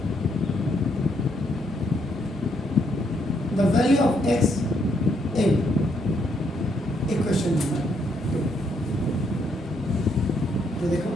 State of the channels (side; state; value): both; normal; correlation 0.74